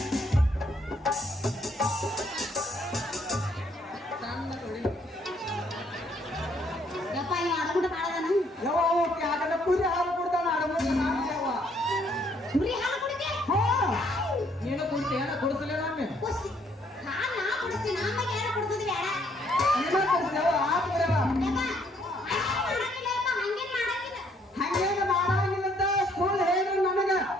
ಕುರಿ ಹಾಲು ಕೊಡ್ತಾನ ನೀನು ಕುಡ್ತೀಯ ಕೊಡಿಸಲೇ ನಮ್ಮೆ ಹಂಗೇನು ಮಾಡಂಗಿಲ್ಲಂತ ಸ್ಕೂಲ್ ಹೇಳು ನನಗ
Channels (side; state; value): both; normal; correlation 0.67